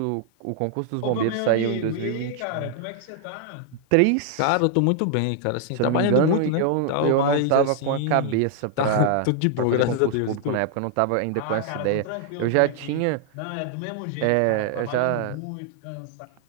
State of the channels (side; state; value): both; different; correlation 0.00